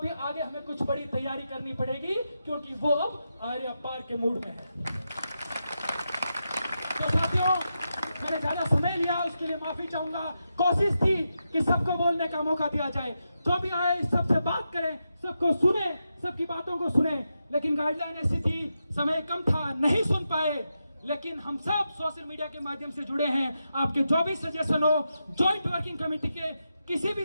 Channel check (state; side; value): inverted; both; correlation -0.87